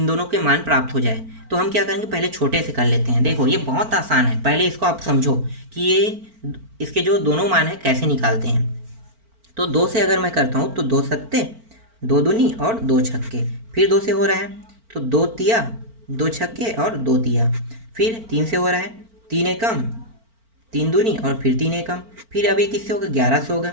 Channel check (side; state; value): left; late; 4.4 ms